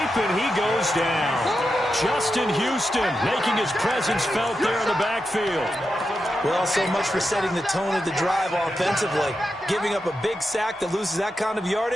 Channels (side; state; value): both; normal; correlation 0.88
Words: and he goes down. Justin Houston making his presence felt there in the backfield. Well, so much for setting the tone of the drive offensively. Giving up a big sack that loses that kind of